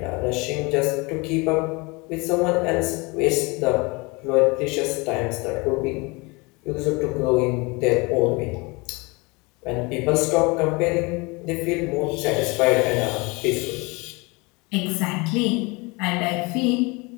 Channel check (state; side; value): quieter; right; 26.8 dB